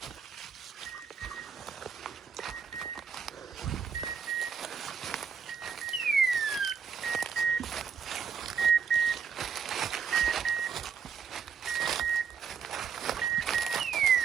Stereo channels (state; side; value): quieter; left; 6.9 dB